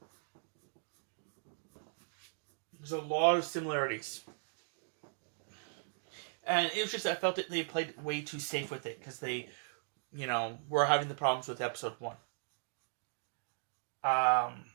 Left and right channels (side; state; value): left; silent; digital silence